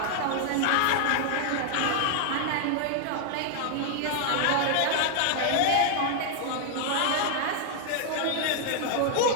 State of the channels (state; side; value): different; both; correlation 0.00